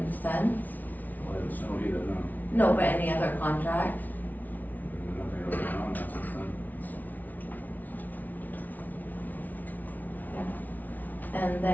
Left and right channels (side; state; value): right; late; 0.080 ms